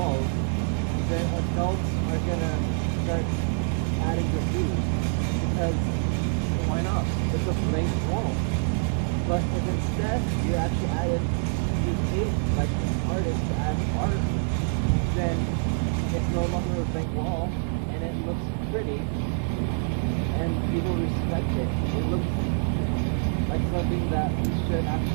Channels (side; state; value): left; silent; 61 dB below the other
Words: then adults are gonna start adding graffiti because why not? It's a blank wall. But if instead you actually added, you take like an artist to add art, then it's no longer a blank wall and it looks pretty and people respect it. It looks like something that you should